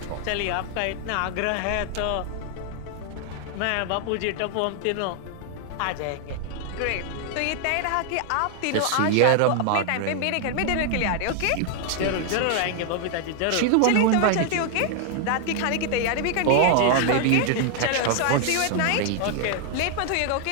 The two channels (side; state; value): both; different; correlation 0.00